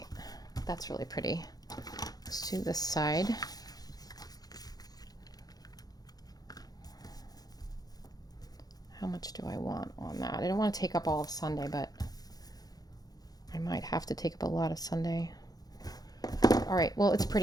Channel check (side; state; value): right; late; 0.19 ms